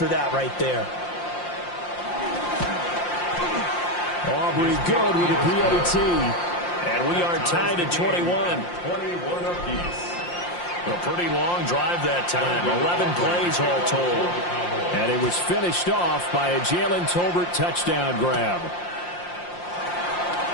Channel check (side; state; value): right; late; 5.7 ms